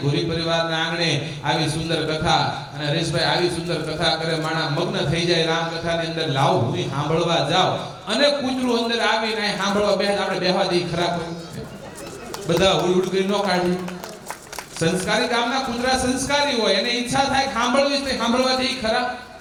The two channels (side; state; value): both; identical; correlation 1.00